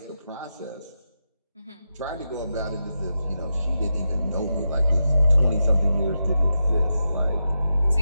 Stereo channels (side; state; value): both; inverted; correlation -0.88